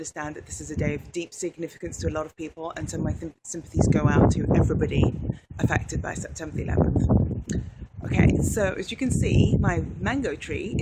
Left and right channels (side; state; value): both; identical; correlation 1.00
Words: that this is a day of deep significance to a lot of people, and so my sympathies go out to everybody affected by September the 11th. Okay, so as you can see, my mango tree